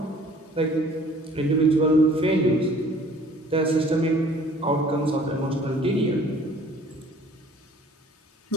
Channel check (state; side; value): normal; both; correlation 0.53